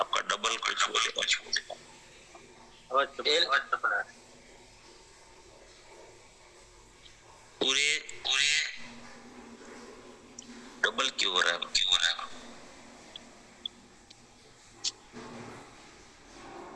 डबल कुछ हो जाएगा। आवाज तो बना है। पूरे डबल क्यों हो रहा है?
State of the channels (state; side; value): identical; both; correlation 1.00